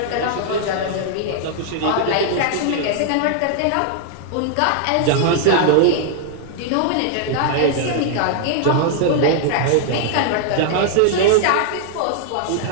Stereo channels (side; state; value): both; different; correlation -0.01